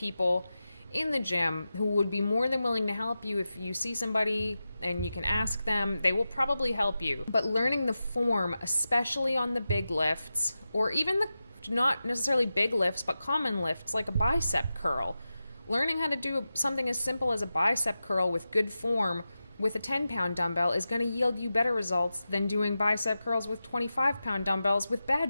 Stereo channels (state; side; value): inverted; both; correlation -0.92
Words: in the gym who would be more than willing to help you. If you see somebody and you can ask them, they will probably help you. But learning the form, especially on the big lifts, or even the not necessarily big lifts, but common lifts like a bicep curl, learning how to do something as simple as a bicep curl with good form with a 10-pound dumbbell is going to yield you better results than doing bicep curls with 25-pound dumbbells with